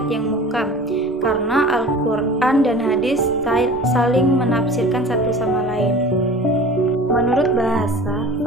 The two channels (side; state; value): both; normal; correlation 0.40